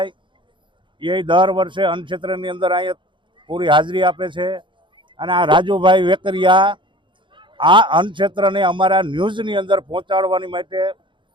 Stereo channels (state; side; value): late; left; 0.23 ms